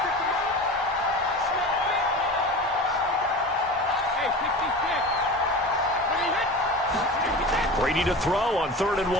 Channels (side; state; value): both; normal; correlation 0.32